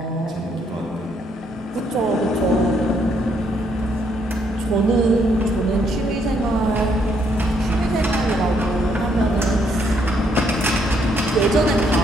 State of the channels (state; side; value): normal; both; correlation 0.72